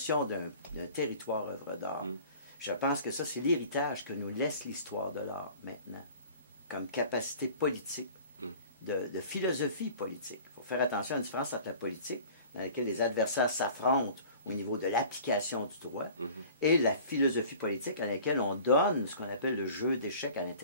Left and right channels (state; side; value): inverted; both; correlation -0.45